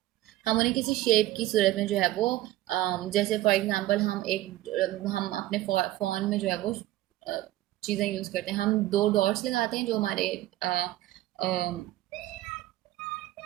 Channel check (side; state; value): left; quieter; 15.7 dB